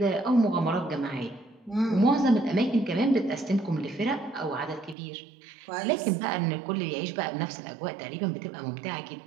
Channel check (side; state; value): left; drops out; at 5.0 s